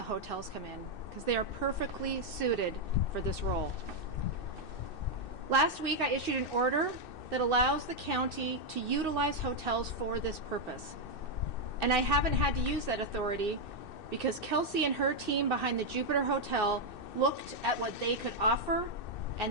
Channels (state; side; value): late; right; 2.6 ms